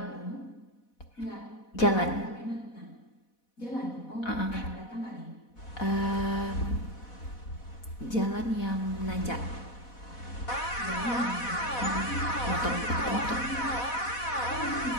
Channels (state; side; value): late; right; 4.1 ms